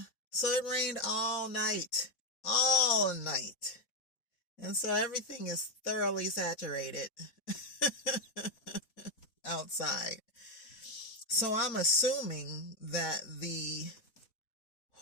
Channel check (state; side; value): late; right; 4.0 ms